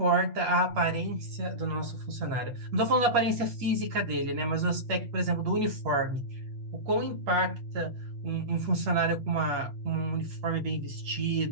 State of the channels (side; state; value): left; late; 8.6 ms